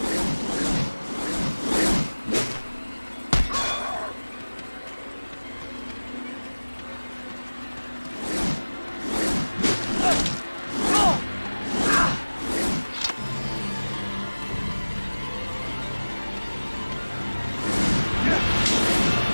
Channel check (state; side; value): inverted; both; correlation -1.00